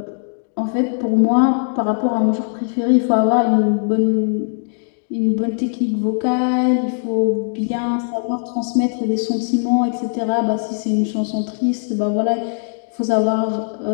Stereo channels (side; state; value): right; silent; digital silence